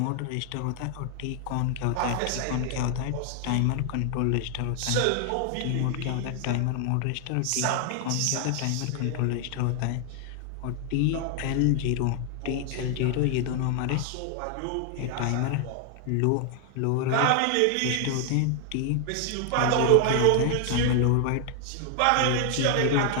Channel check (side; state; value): both; different; correlation 0.00